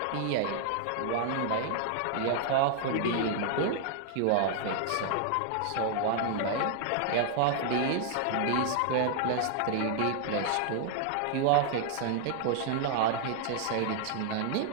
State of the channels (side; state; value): both; different; correlation 0.00